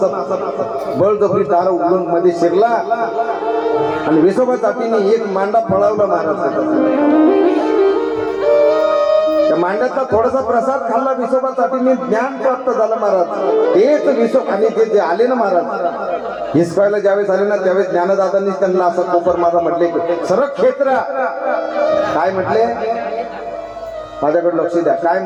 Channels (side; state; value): both; identical; correlation 1.00